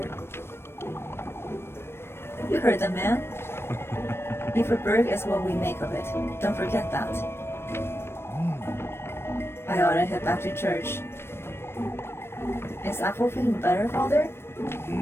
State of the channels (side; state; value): right; late; 0.12 ms